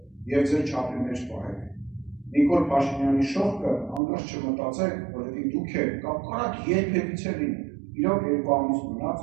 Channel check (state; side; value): drops out; left; at 4.0 s